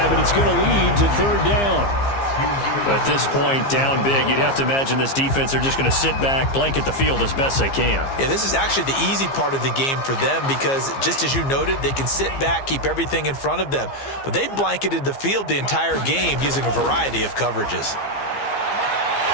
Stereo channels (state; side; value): late; right; 15 ms